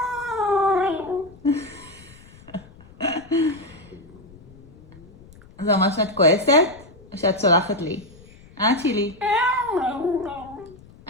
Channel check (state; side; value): noise; left; rumble, 23 dB below the sound